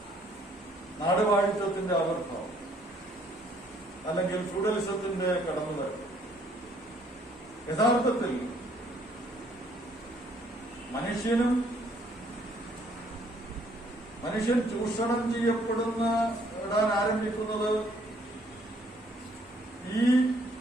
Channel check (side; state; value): both; normal; correlation 0.64